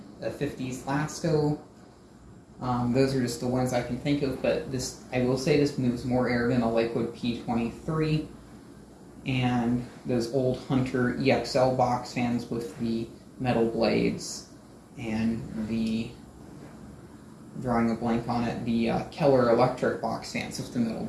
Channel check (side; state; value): both; identical; correlation 1.00